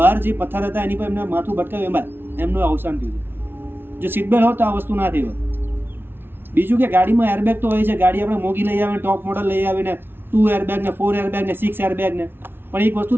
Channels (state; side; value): late; left; 0.11 ms